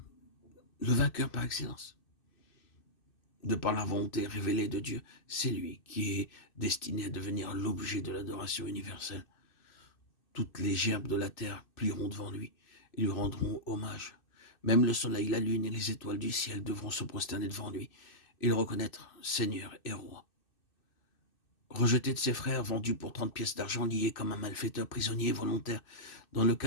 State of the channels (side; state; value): right; late; 2.6 ms